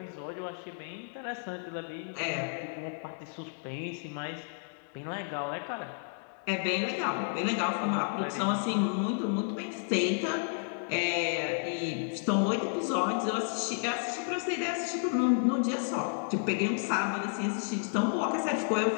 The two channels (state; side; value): silent; right; 57 dB below the other